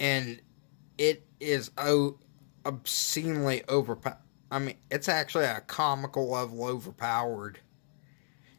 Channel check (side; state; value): right; silent; digital silence